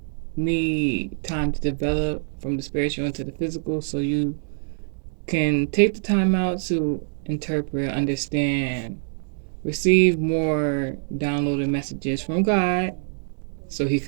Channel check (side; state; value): left; silent; digital silence